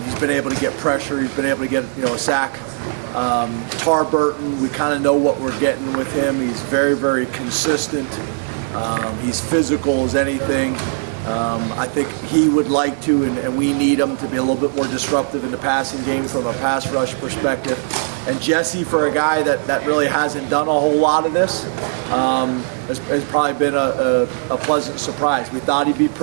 been able to get pressure. He's been able to get a sack. Burton, we kind of know what we're getting with him. He's very, very consistent. He's physical as anything. I think he would like to, and we need him to be a little bit more disruptive in the passing game from a pass rush perspective. And Jesse, for a guy that really hasn't done a whole lot of this, has probably been a pleasant surprise. We thought he'd be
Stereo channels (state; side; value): silent; left; digital silence